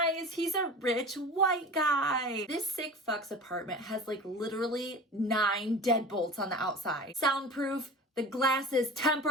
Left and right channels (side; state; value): both; normal; correlation 0.36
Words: He's a rich white guy. This sick fuck's apartment has like literally 9 deadbolts on the outside. Soundproof. The glass is